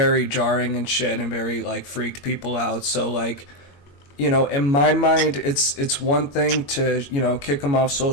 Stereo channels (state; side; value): late; right; 22 ms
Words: jarring and shit, and very like freaked people out. So like, in my mind, it's one thing to kick him off